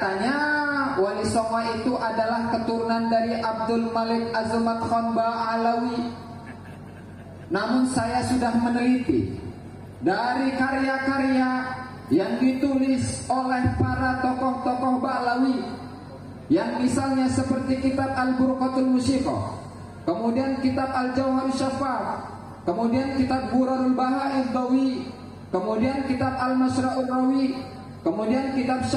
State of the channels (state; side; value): identical; both; correlation 1.00